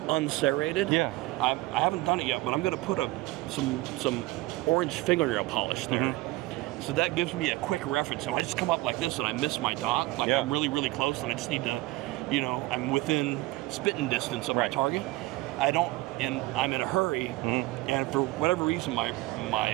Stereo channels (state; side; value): quieter; left; 19.5 dB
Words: unserrated. Yeah. I haven't done it yet, but I'm going to put some orange fingernail polish there. Mm-hmm. So that gives me a quick reference. So I just come up like this and I miss my dot. Like I'm really, really close, and I just need to, I'm within spitting distance of my target. I'm in a hurry, and for whatever reason,